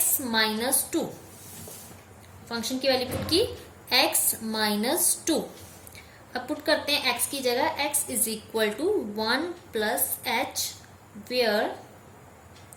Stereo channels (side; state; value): both; identical; correlation 1.00